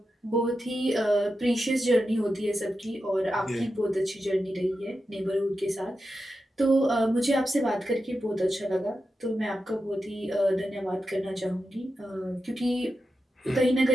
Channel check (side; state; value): both; normal; correlation 0.90